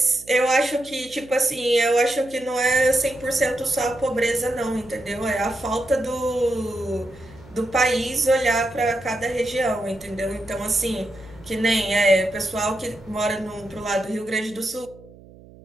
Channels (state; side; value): noise; right; hum, 22 dB below the sound